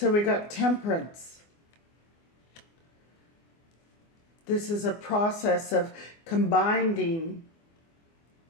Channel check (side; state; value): right; late; 24 ms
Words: we got Temperance. This is a process of combining